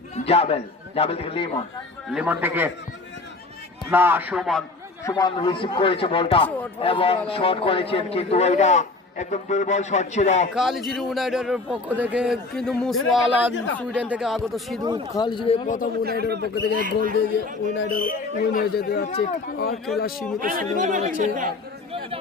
জাবেল জাবেল থেকে লিমন লিমন থেকে না সুমন সুমন রিসিভ করেছে বলটা এবং শট করেছেন কিন্তু ওইটা একদম দুর্বল শট ছিল কালিজিরি ইউনাইটেডের পক্ষ থেকে কিন্তু মুসওয়ালা সুইডেন থেকে আগত সিধু কালিজিরি প্রথম ইউনাইটেডের পক্ষ থেকে গোল দিয়ে ইউনাইটেড উইন হয়ে যেতে যাচ্ছে আর খেলা সীমিত সময় রয়েছে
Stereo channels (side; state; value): right; quieter; 3.5 dB